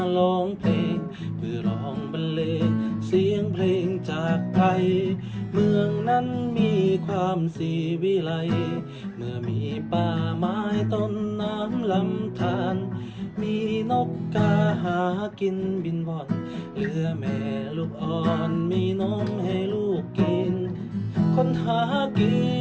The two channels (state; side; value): identical; both; correlation 1.00